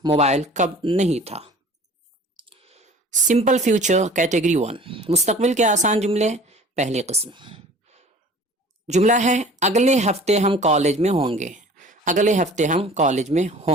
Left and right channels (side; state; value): both; normal; correlation 0.46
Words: موبائل کب نہیں تھا. سمپل فیوچر کیٹیگری 1، مستقبل کے آسان جملے، پہلی قسم. جملہ ہے اگلے ہفتے ہم کالج میں ہوں گے. اگلے ہفتے ہم کالج میں